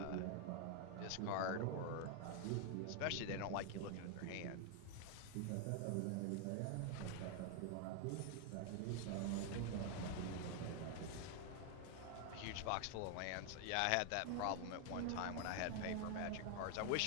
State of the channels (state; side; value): different; both; correlation 0.00